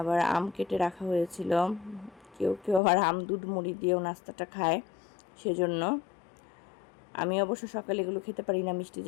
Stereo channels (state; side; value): drops out; right; at 2.8 s